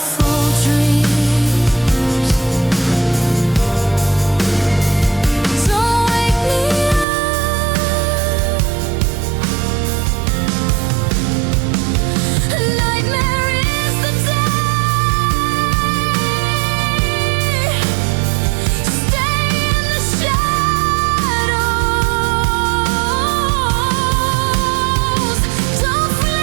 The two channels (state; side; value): drops out; left; at 7.1 s